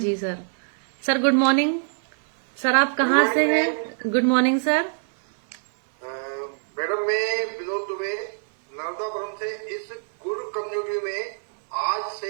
sir. Sir good morning. Sir आप कहाँ से हैं? Good morning sir. मैडम मैं विनोद दुबे नर्मदापुरम से इस गुरु कम्युनिटी में आज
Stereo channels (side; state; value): left; silent; digital silence